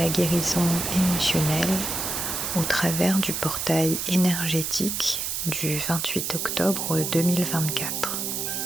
guérison émotionnelle au travers du portail énergétique du 28 octobre 2024.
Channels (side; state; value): right; noise; hiss, 2 dB below the sound